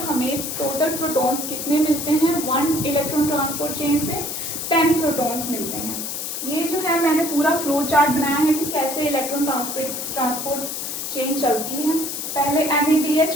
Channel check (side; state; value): left; noise; hiss, 5 dB below the sound